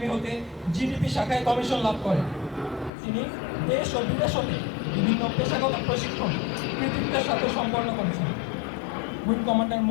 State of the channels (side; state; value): right; drops out; at 2.9 s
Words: হতে জিডিপি শাখায় কমিশন লাভ করেন। তিনি দেশ ও বিদেশ হতে বিভিন্ন পেশাগত প্রশিক্ষণ কৃতিত্বের সাথে সম্পন্ন করেছেন। Wing commander